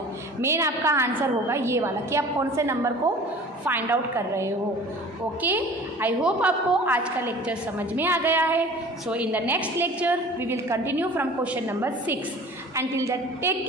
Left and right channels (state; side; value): normal; both; correlation 0.44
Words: मेन आपका आंसर होगा ये वाला कि आप कौन से नंबर को फाइंड आउट कर रहे हो. ओके, आई होप आपको आज का लेक्चर समझ में आ गया है. So in the next lecture we will continue from question number 6. Until that, take